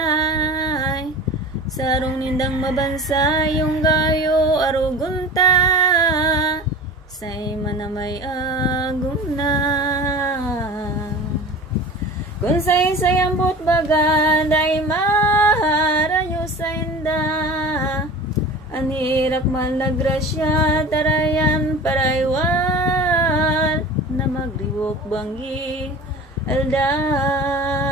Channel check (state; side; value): normal; both; correlation 0.36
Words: Sarong nindang mabansay yung gayo arugunta. Say manamay agum na. Kung say ambot baga, day maharayo sa inda. Anirak man la grasya, tarayan paraywan. Na magriwok banggi aldaw.